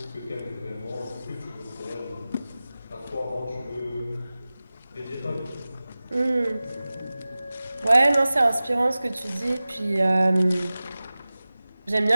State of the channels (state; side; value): inverted; both; correlation -0.97